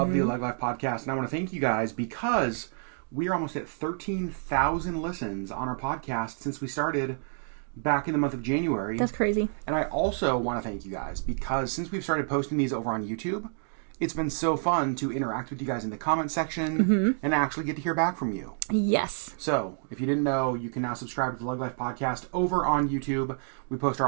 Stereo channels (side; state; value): left; silent; 59 dB below the other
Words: the LeggLife Podcast. And I want to thank you guys because we are almost at 13,000 listens on our podcast since we started back in the month of January. That's crazy. And I also want to thank you guys because since we've started posting these over on YouTube, it's been so fun to interact with you guys in the comment section and actually get to hear back from you. Yes. So, if you didn't know, you can now subscribe to the LeggLife Podcast over on YouTube. We post